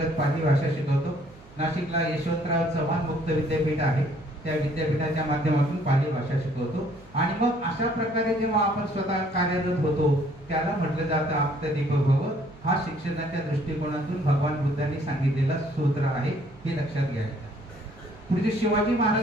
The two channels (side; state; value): right; noise; hum, 23 dB below the sound